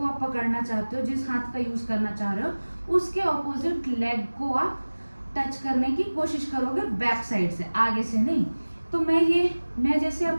आप पकड़ना चाहते हो, जिस हाथ का यूज करना चाह रहे हो, उसके ऑपोजिट लेग को आप टच करने की कोशिश करोगे बैक साइड से, आगे से नहीं। तो मैं जैसे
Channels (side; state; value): both; inverted; correlation -1.00